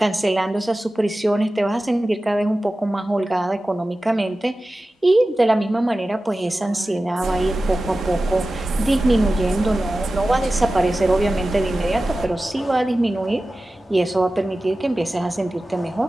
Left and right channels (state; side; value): normal; both; correlation 0.95